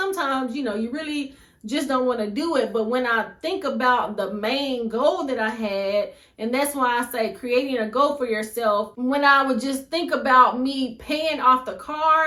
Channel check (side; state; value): both; identical; correlation 1.00